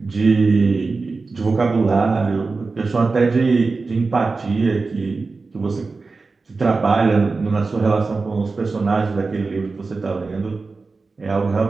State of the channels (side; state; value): left; quieter; 4.0 dB